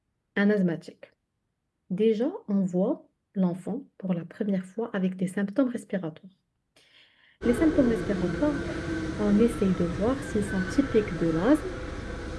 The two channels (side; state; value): both; identical; correlation 1.00